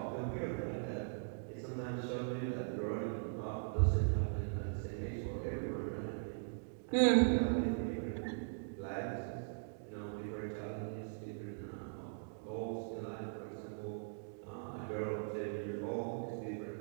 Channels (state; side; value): silent; left; digital silence